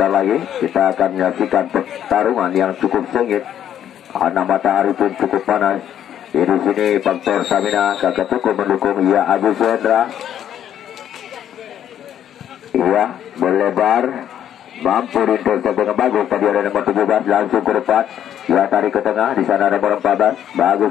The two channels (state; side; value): quieter; right; 10.2 dB